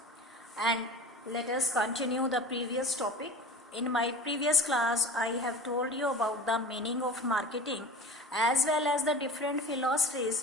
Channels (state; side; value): normal; both; correlation 0.37